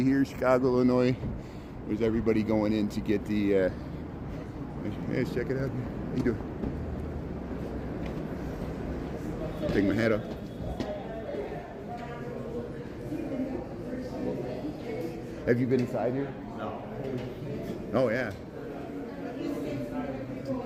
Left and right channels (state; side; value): identical; both; correlation 1.00